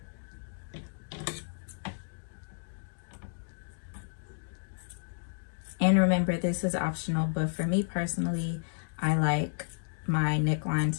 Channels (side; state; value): right; silent; digital silence